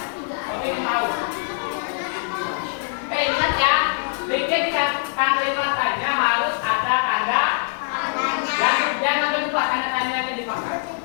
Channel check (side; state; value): right; silent; 62 dB below the other